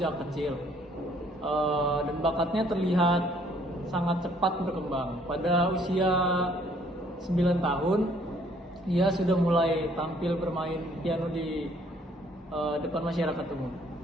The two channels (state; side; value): normal; both; correlation 0.62